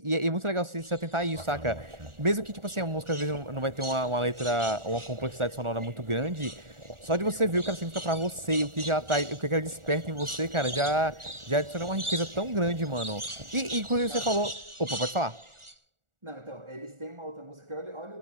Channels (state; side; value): late; left; 1.4 ms